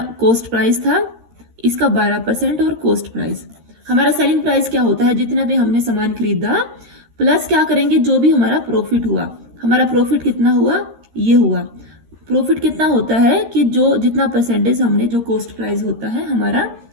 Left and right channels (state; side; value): late; left; 13 ms